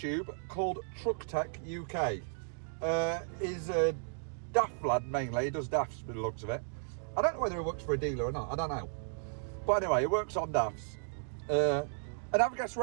called Truck Tech UK. He's a daft lad mainly. He does dafts by the looks of it. I don't know whether he works for a dealer or not. I don't know. But anyway, he works on dafts. And have a guess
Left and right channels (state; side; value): silent; left; digital silence